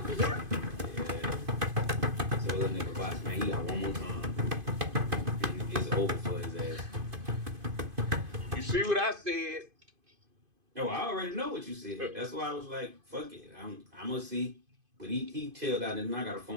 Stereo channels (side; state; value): left; late; 2.5 ms